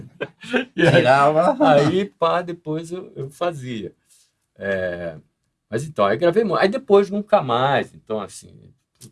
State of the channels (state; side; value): identical; both; correlation 1.00